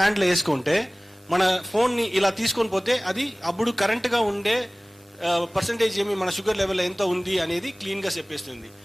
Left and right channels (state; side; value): normal; both; correlation 0.98